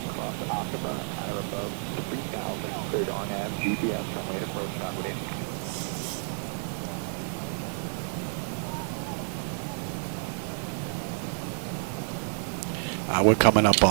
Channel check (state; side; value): silent; left; 58 dB below the other